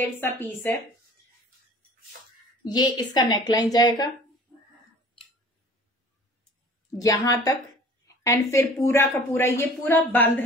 सा पीस है। ये इसका नेकलाइन जाएगा यहां तक, एंड फिर पूरा का पूरा ये पूरा बंद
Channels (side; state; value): both; normal; correlation 0.47